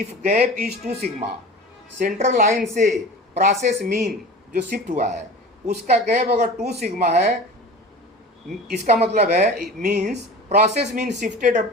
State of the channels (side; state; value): both; normal; correlation 0.36